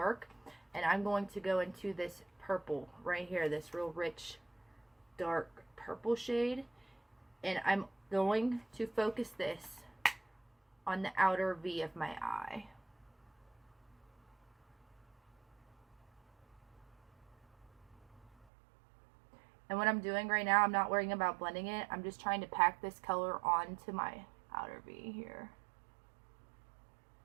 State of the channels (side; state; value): left; drops out; at 18.4 s